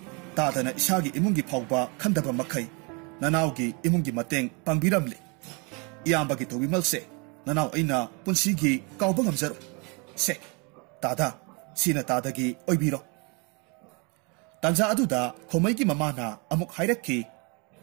tadana isagi imungi phawba khandaba makhai nanawgi imungi mateng pangbiramli iyambagi tobimalse nanaw aina punsigi kawba ngamjaro se tada sina tadagi oibiro tanja aduda khomaigi mamana amuk hairakki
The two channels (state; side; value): quieter; left; 31.8 dB